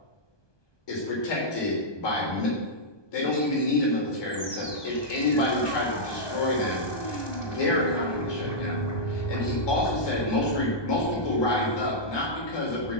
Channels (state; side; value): late; right; 1.2 ms